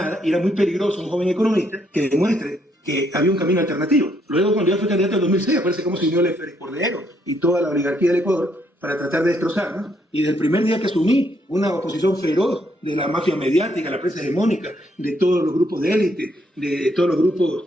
y era muy peligroso un joven economista que demuestre que había un camino alternativo. Luego, cuando yo fui candidato en 2006, aparece cómo se unió el Félix Cordero y toda la oligarquía del Ecuador para tratar de destrozarnos. Y desde el primer día que asumí, una oposición feroz de la mafia mediática, la prensa hegemónica, de todos los grupos de élite, de todos los grupos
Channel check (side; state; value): both; normal; correlation 0.72